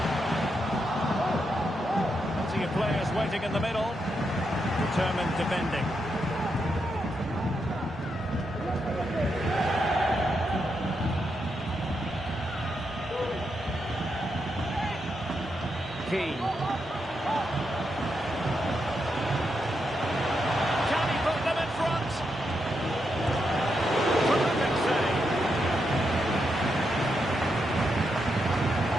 Players waiting in the middle. Determined defending. Keane. Can he put them in front? Perfect save.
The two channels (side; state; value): both; normal; correlation 0.83